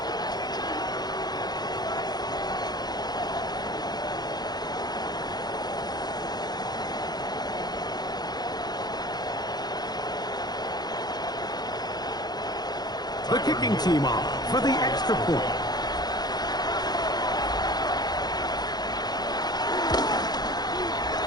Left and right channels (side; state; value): right; late; 0.19 ms